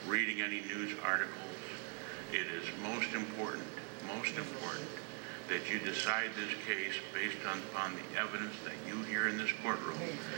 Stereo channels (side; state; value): left; quieter; 34.9 dB